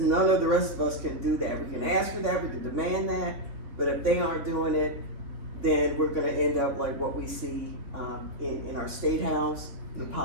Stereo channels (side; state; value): left; late; 3.5 ms